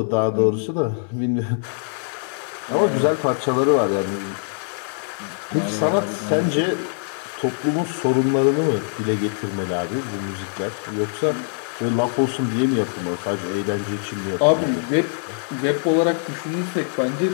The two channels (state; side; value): silent; right; digital silence